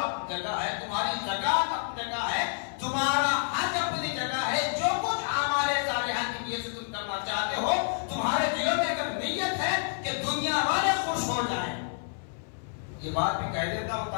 جگہ ہے، تمہاری زکات اپنی جگہ ہے، تمہارا حج اپنی جگہ ہے، جو کچھ اعمال صالحہ کی نیت سے تم کرنا چاہتے ہو، تمہارے دلوں میں اگر نیت ہے کہ دنیا والے خوش ہو جائیں، یہ بات بھی کہہ دیتا ہوں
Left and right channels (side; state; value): right; silent; 59 dB below the other